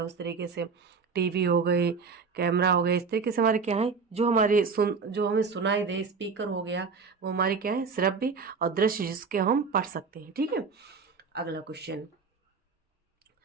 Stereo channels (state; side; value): quieter; left; 5.0 dB